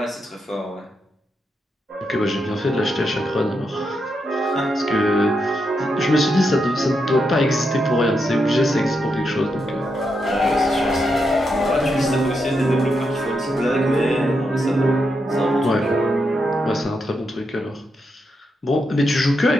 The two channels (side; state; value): both; normal; correlation 0.83